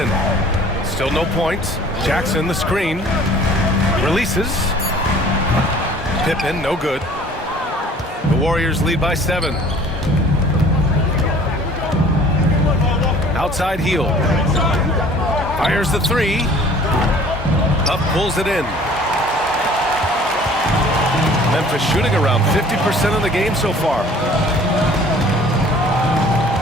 Still no points. Jackson, the screen. Releases. Pippen, no good. The Warriors lead by 7. Outside heel. Fires the 3. Up pulls it in. Memphis shooting around 50% of the game so far.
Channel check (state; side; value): normal; both; correlation 0.51